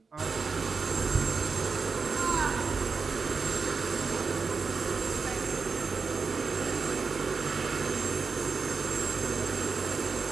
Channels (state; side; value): quieter; left; 4.9 dB